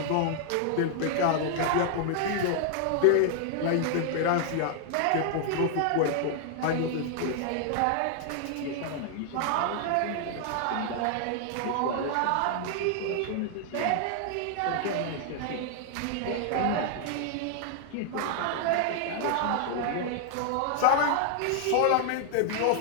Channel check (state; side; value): different; both; correlation 0.00